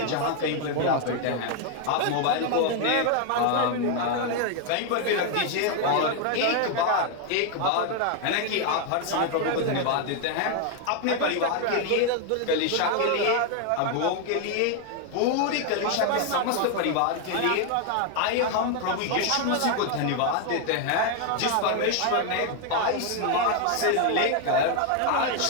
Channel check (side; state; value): both; different; correlation 0.00